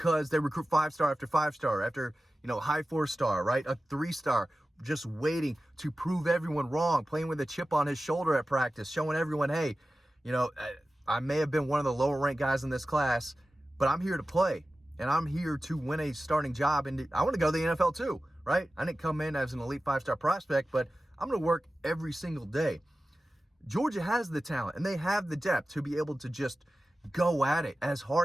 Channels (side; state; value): both; normal; correlation 0.95